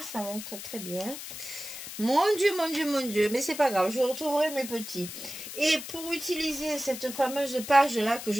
va être très bien. Mon Dieu, mon Dieu, mon Dieu. Mais c'est pas grave, je retrouverai mes petits. Et pour utiliser cette fameuse page-là que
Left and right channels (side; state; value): left; noise; hiss, 10 dB below the sound